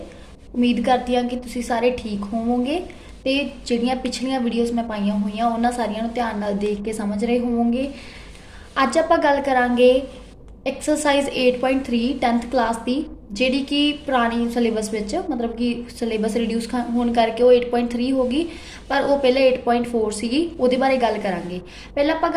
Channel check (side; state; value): both; identical; correlation 1.00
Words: ਉਮੀਦ ਕਰਦੀ ਹਾਂ ਕਿ ਤੁਸੀਂ ਸਾਰੇ ਠੀਕ ਹੋਵੋਗੇ ਤੇ ਜਿਹੜੀਆਂ ਪਿਛਲੀਆਂ ਵੀਡੀਓਜ਼ ਮੈਂ ਪਾਈਆਂ ਹੋਈਆਂ ਉਹਨਾਂ ਸਾਰੀਆਂ ਨੂੰ ਧਿਆਨ ਨਾਲ ਦੇਖ ਕੇ ਸਮਝ ਰਹੇ ਹੋਵੋਗੇ। ਅੱਜ ਆਪਾਂ ਗੱਲ ਕਰਾਂਗੇ ਐਕਸਰਸਾਈਜ਼ 8.3 10th ਕਲਾਸ ਦੀ, ਜਿਹੜੀ ਕਿ ਪੁਰਾਣੀ ਸਿਲੇਬਸ ਵਿੱਚ ਮਤਲਬ ਕਿ ਸਿਲੇਬਸ ਰਿਡਿਊਸ ਹੋਣ ਕਰਕੇ ਉਹ 8.3 ਹੋ ਗਈ, ਪਰ ਉਹ ਪਹਿਲੇ 8.4 ਸੀਗੀ। ਉਹਦੇ ਬਾਰੇ ਗੱਲ ਕਰਾਂਗੇ। ਪਹਿਲਾਂ ਆਪਾਂ